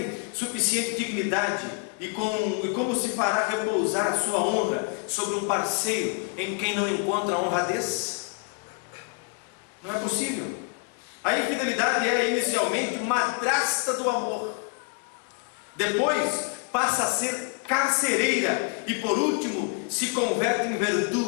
suficiente dignidade e como se fará repousar a sua honra sobre um parceiro em quem não encontra honradez? Não é possível. A infidelidade é inicialmente madrasta do amor, depois passa a ser carcereira e por último se converte em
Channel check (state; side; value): quieter; right; 36.5 dB